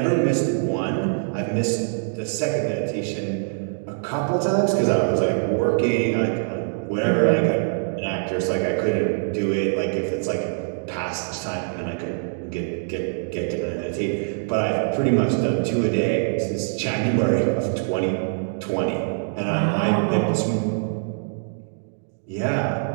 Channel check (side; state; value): left; silent; digital silence